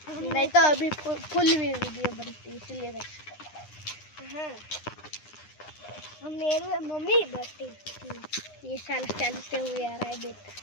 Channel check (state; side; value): late; right; 9.8 ms